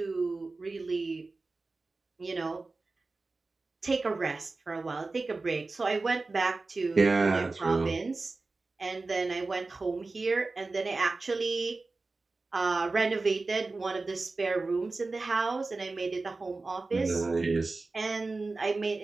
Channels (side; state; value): left; quieter; 3.6 dB